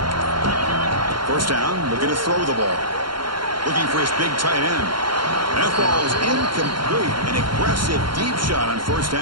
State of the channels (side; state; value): left; late; 0.73 ms